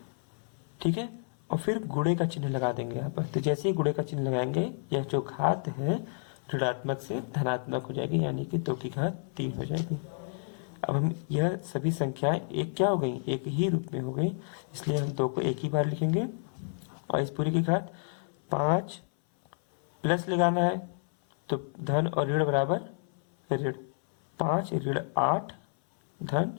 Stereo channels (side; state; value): right; silent; 58 dB below the other